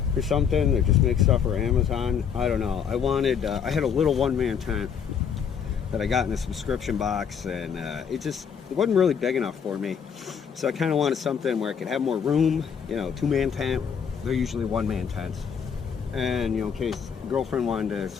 or something that just makes stuff for Amazon. I don't know. I wanted, I had a little one-man tent that I got in a subscription box, and it wasn't really big enough for me. So I kind of wanted something where I could have more room, you know, two-man tent. They're usually one-man tents. And, you know, in case girlfriend wanted to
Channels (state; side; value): quieter; right; 7.3 dB